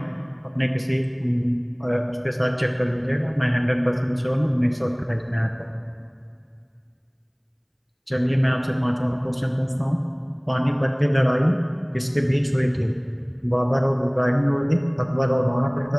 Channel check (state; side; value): identical; both; correlation 1.00